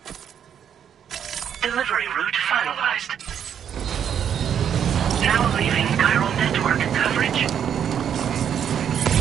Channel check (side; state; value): left; quieter; 8.7 dB